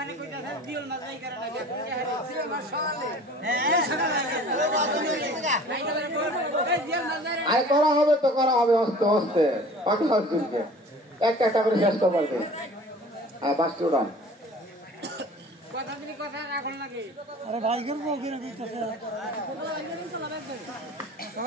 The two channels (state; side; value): normal; both; correlation 0.45